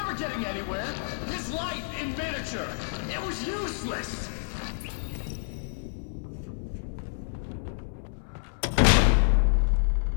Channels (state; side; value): silent; right; 59 dB below the other